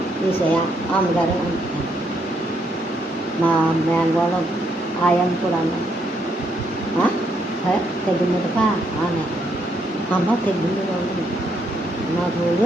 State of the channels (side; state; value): both; normal; correlation 0.75